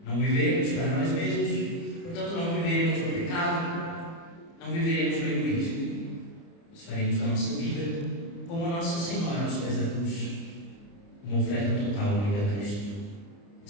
Não viveremos para nós mesmos, portanto não viveremos no pecado, não viveremos no egoísmo. Nós faremos a nossa vida como a Nossa Senhora aos pés da cruz, uma oferta total unida a Cristo.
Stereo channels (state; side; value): late; right; 30 ms